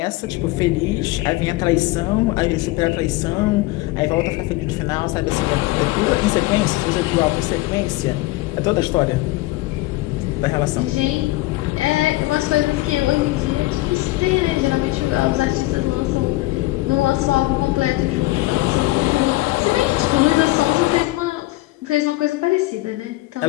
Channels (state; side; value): quieter; right; 19.5 dB